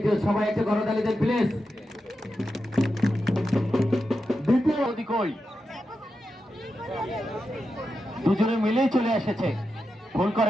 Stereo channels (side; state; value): both; normal; correlation 0.89